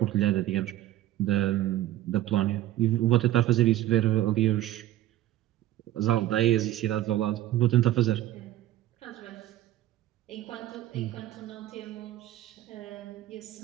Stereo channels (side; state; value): left; quieter; 14.0 dB